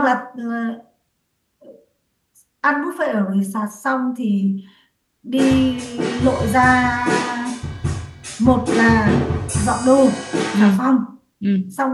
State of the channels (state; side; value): identical; both; correlation 1.00